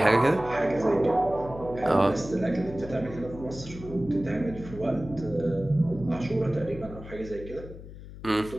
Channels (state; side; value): noise; left; hum, 14 dB below the sound